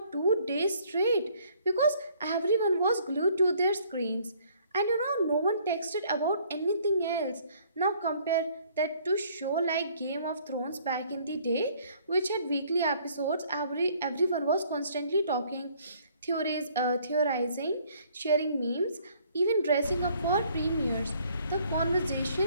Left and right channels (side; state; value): both; inverted; correlation -0.61